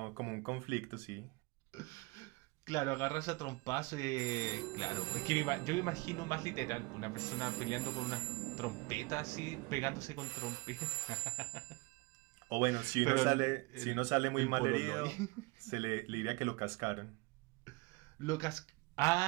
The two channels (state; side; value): quieter; left; 25.9 dB